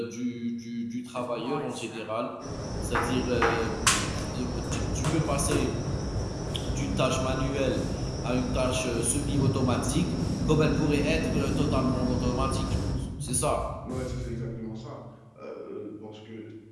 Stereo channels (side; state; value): both; identical; correlation 1.00